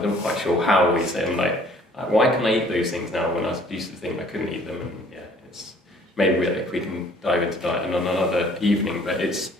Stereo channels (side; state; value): both; normal; correlation 0.56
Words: not quite sure how we say, I'm like, why can I eat those things now when I used to think I couldn't eat them? And it's maybe we can dive into diet on another evening, but I just